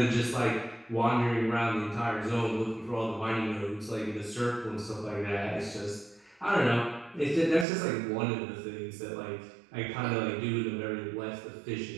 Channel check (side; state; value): left; drops out; at 7.7 s